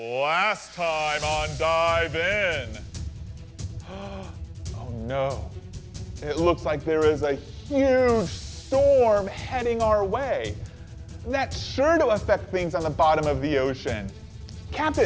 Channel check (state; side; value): identical; both; correlation 1.00